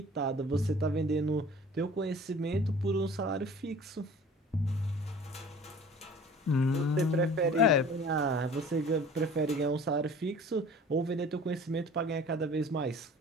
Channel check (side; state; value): both; normal; correlation 0.46